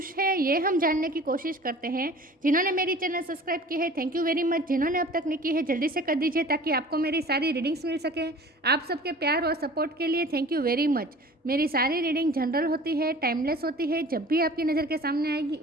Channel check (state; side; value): normal; both; correlation 0.44